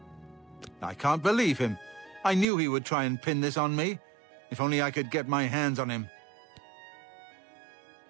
I can't believe him. I knew he would try and pin this on me. If only I could get my hands on him.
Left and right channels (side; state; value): left; drops out; at 2.5 s